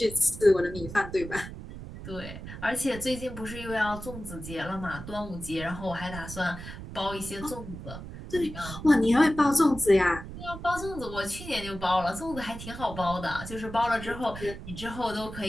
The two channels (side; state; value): right; noise; rumble, 11 dB below the sound